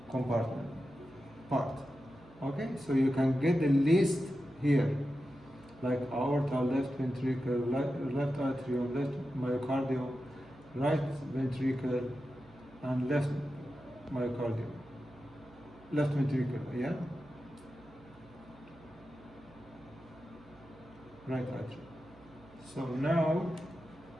compartment part. Okay, so you can get the list here, like aorta, left ventricle, left atrium, left myocardium, right ventricle, and left myocardium, left ventricle, yeah, right atrium. So now,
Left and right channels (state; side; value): noise; right; hum, 25 dB below the sound